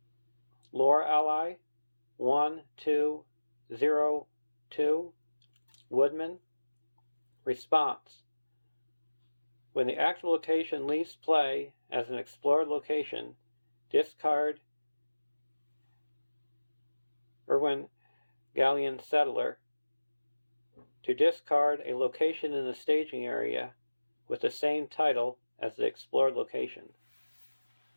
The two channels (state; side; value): inverted; both; correlation -1.00